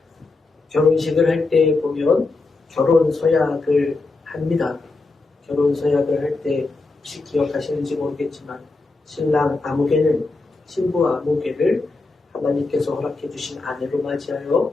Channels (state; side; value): quieter; right; 3.5 dB